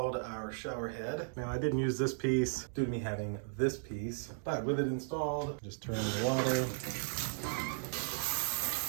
our shower head. Now I didn't use this piece due to me having this piece, but with it installed, just turn the water.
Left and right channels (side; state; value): left; silent; digital silence